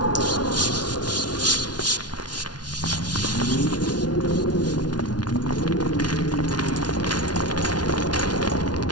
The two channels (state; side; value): late; right; 0.69 ms